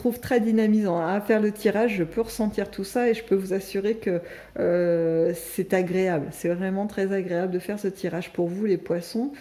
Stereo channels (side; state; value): both; identical; correlation 1.00